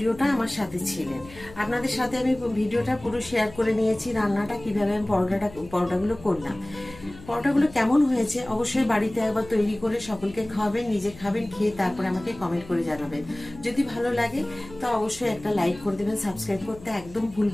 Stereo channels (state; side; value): noise; left; hum, 19 dB below the sound